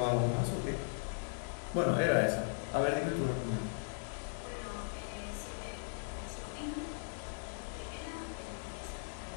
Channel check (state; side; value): silent; right; digital silence